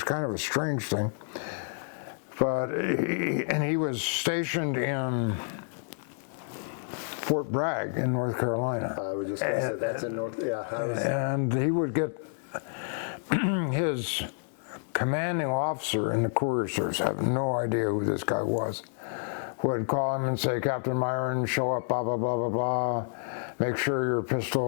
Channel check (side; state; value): right; silent; digital silence